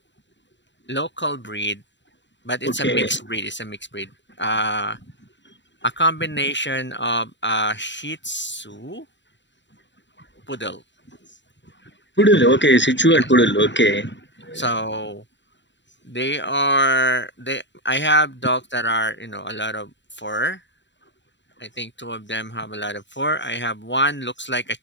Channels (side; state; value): right; late; 0.53 ms